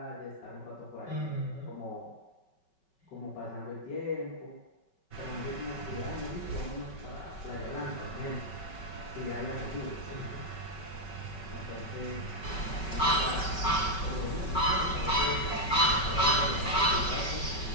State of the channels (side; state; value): right; late; 5.3 ms